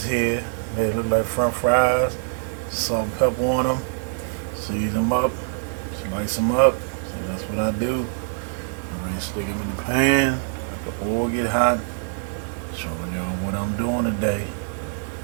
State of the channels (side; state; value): left; silent; digital silence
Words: here. Made it look like French fries. Salt and pepper on them. Season them up. Slice them up. See, that's what I do. Alright, stick them in the pan. Let the oil get hot. Showing y'all what I'm doing today.